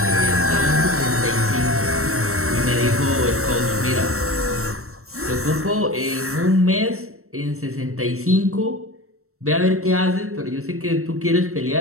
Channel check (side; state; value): left; late; 0.63 ms